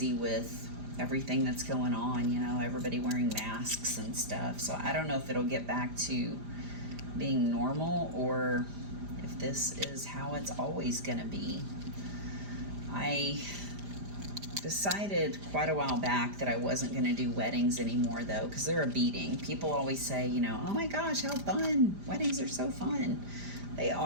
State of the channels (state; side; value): late; left; 5.0 ms